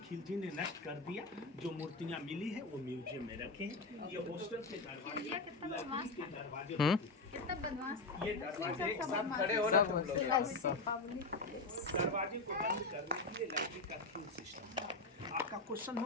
खिलजी ने नष्ट कर दिया। जो मूर्तियां मिली है वो म्यूजियम में रखे हैं। ये हॉस्टल के दरवाजे कितना बदमाश था। ये दरवाजे एक साथ खड़े हो ना तुम लोग। दरवाजे को बंद करने के लिए लकड़ी का क्यू सिस्टम। आपका क्वेश्चन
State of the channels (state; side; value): quieter; right; 3.4 dB